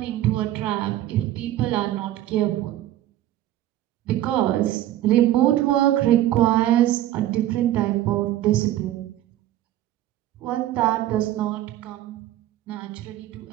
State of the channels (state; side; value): quieter; left; 13.5 dB